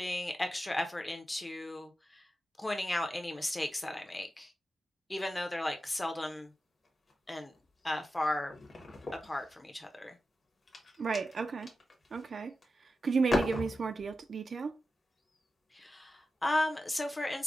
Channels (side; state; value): both; normal; correlation 0.92